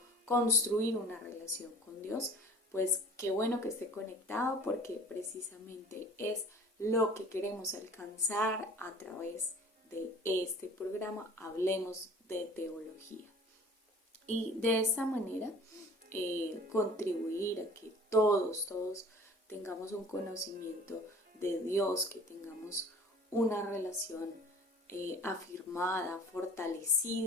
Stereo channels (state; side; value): normal; both; correlation 0.46